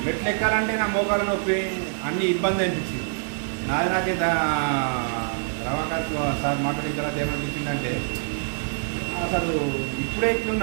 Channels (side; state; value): left; silent; digital silence